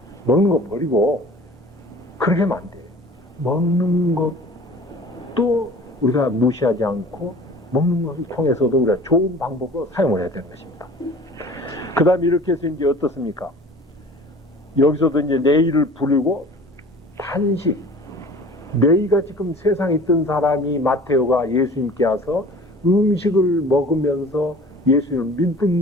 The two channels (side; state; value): both; normal; correlation 0.44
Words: 먹는 거 버리고 그렇게 하면 안 돼요. 먹는 것도 우리가 무시하지 않고 먹는 것을 통해서도 우리가 좋은 방법으로 사용을 해야 되는 것입니다. 그 다음에 이렇게 해서 이제 어떻습니까? 여기서도 이제 내일을 부르고 단식. 너희가 지금 세상에 있던 사람이 마테오가 예수님께 와서 음식을 먹으면서 예수님을 믿는